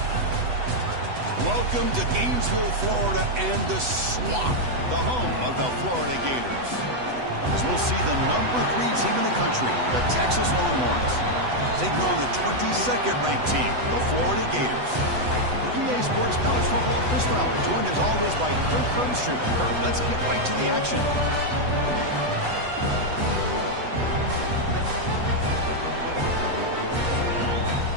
Welcome to Gainesville, Florida, and the Swamp, the home of the Florida Gators. As we'll see the #3 team in the country, the Texas Longhorns, taking on the 22nd ranked team, the Florida Gators. For EA Sports College Football, Chris Fowler, joined as always by Kirk Herbstreit. Kirk, let's get right to the action.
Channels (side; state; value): left; late; 8.0 ms